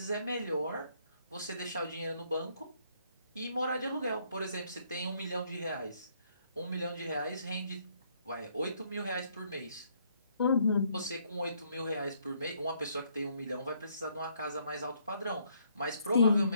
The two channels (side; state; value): both; inverted; correlation -0.69